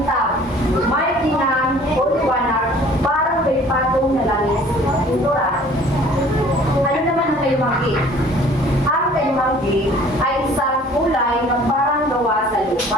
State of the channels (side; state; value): both; normal; correlation 0.52